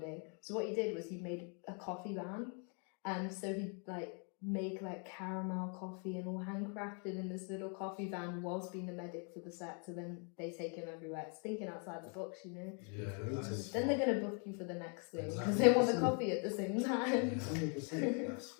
So what he did was he made a coffee van, and so he'd like make like caramel coffee and all handcrafted in this little coffee van whilst being the medic for the set, so then they take him everywhere. It's thinking outside the box, you know. Then they're gonna book you for the next thing because they want the coffee at the same time. 100%. That's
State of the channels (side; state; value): right; quieter; 39.2 dB